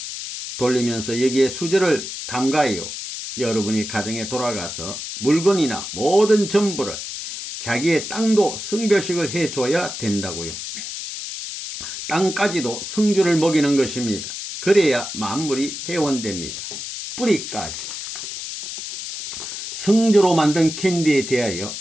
돌리면서 여기에 수저를 담가요. 여러분이 가정에 돌아가서 물건이나 모든 전부를 자기의 땅도 성별식을 해줘야 된다고요. 땅까지도 성주를 먹이는 것입니다. 그래야 만물이 회원됩니다. 뿌리까지. 성주로 만든 캔디에 대하여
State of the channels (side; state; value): left; noise; hiss, 7 dB below the sound